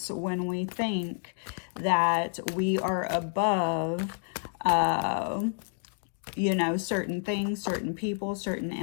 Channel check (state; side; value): silent; right; 58 dB below the other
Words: when we think that we are above, you know, certain things, certain people, certain